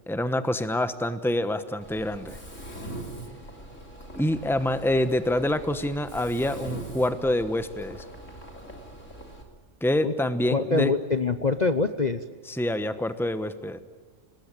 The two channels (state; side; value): normal; both; correlation 0.63